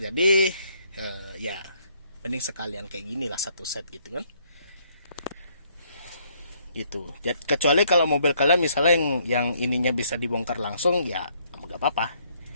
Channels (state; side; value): inverted; both; correlation -0.68